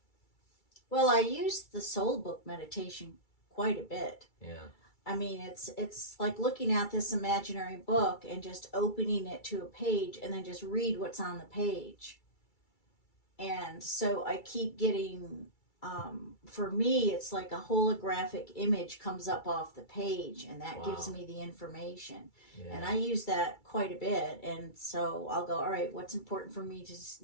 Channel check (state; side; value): late; right; 2.3 ms